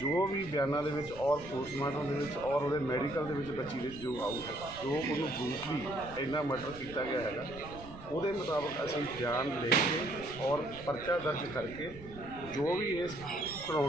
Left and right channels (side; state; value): right; noise; rumble, 16 dB below the sound